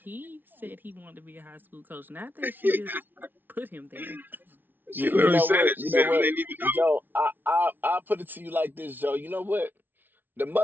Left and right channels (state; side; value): late; left; 0.091 ms